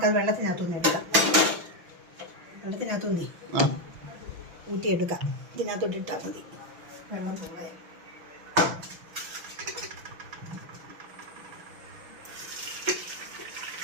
വെള്ളത്തിനകത്തുനിന്ന് എടുക്കാം. വെള്ളത്തിനകത്തുനിന്ന് ഊറ്റിയെടുക്കാം. ഇതിനകത്തോട്ട് ഇട്ടാൽ മതി. വെള്ളം പോകാൻ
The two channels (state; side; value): late; left; 6.1 ms